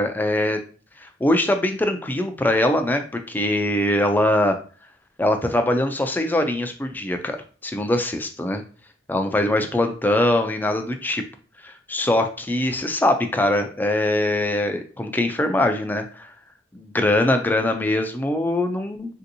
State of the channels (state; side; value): normal; both; correlation 0.71